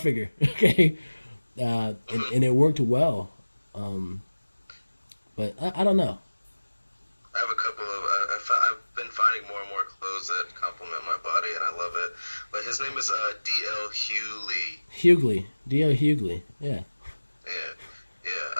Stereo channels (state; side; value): inverted; both; correlation -1.00